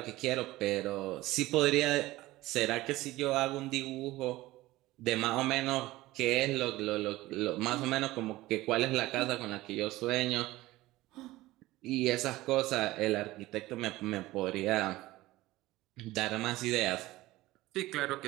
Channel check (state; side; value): quieter; left; 17.9 dB